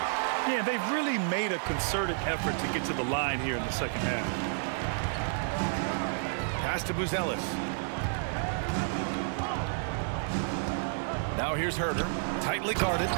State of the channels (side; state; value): left; silent; digital silence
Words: Yeah, they've really made a concerted effort to get to the line here in the second half. Pass to Buzelis. Now here's Herter. Tightly guarded.